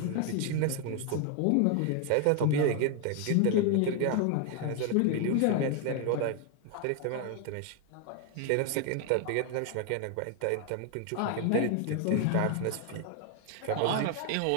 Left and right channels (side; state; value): both; different; correlation 0.01